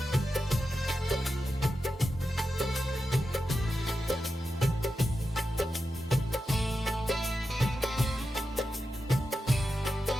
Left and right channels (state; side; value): normal; both; correlation 0.90